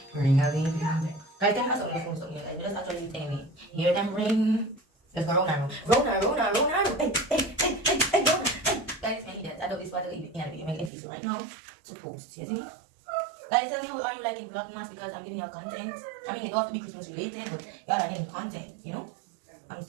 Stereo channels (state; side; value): drops out; left; at 10.9 s